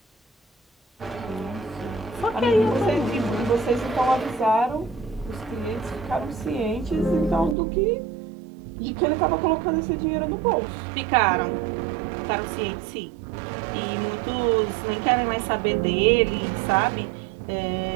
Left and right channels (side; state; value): left; drops out; at 7.6 s